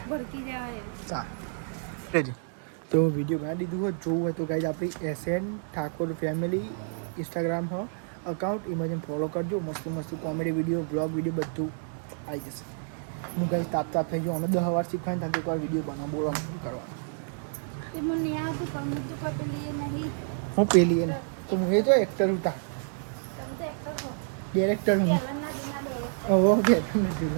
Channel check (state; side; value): silent; left; digital silence